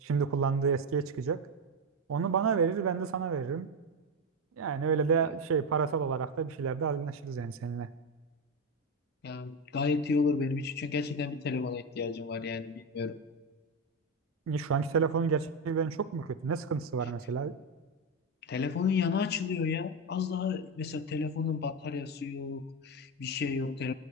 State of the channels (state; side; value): normal; both; correlation 0.12